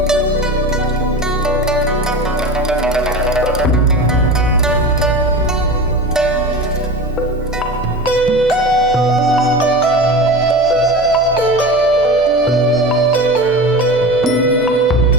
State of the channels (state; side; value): normal; both; correlation 0.30